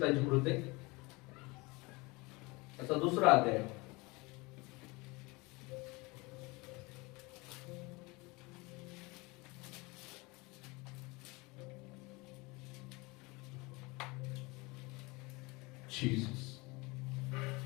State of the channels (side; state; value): right; quieter; 25.0 dB